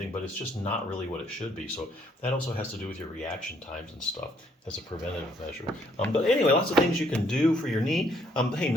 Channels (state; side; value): normal; both; correlation 0.68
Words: but it's just not really what it should be. So that also has to do with your reaction times and stuff as a preventative measure. But anyway, lots of things you can do for your knee. Hey,